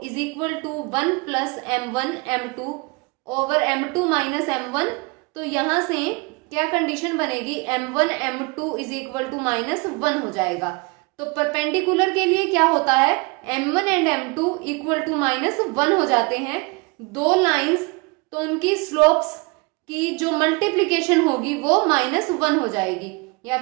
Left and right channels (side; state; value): left; quieter; 28.6 dB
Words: is equal to 1 plus m1 m2 over m2 minus m1। तो यहां से क्या कंडीशन बनेगी, m1 m2 is equal to minus 1 हो जाएगा। तो परपेंडिकुलर के लिए क्या होता है, m1 and m2 equal to minus 1 हो जाते हैं। दो लाइंस तो उनकी स्लोप्स की जो मल्टीप्लीकेशन होगी वो माइनस 1 हो जाएगी, या